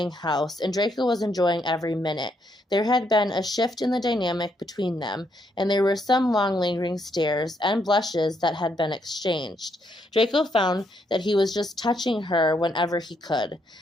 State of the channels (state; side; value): normal; both; correlation 0.75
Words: house, and Draco was enjoying every minute. There had been a shift in the dynamic between them, and there were some long lingering stares and blushes that had been exchanged. Draco found that he was just touching her whenever he could,